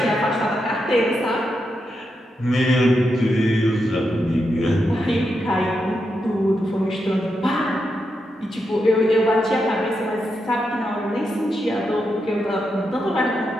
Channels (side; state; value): both; normal; correlation 0.85